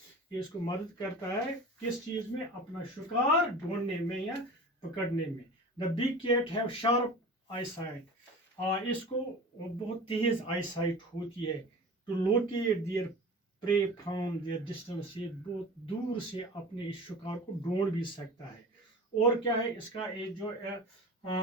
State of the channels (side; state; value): both; normal; correlation 0.36